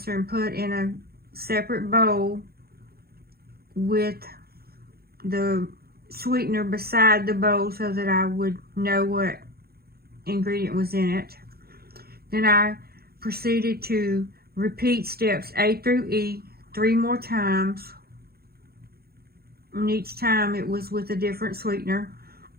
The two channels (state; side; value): late; left; 0.45 ms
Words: and put in a separate bowl with the sweetener beside the bowl so that I would know what ingredient was in it. Then I proceeded to repeat steps A through E 3 more times, and each time it was with a different sweetener.